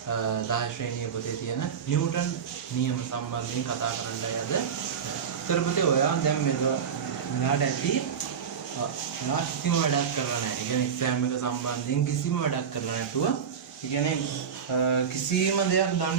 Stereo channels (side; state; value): left; quieter; 7.2 dB